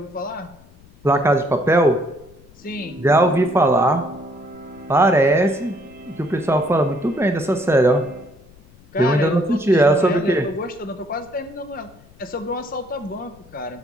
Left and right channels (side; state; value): left; noise; rumble, 26 dB below the sound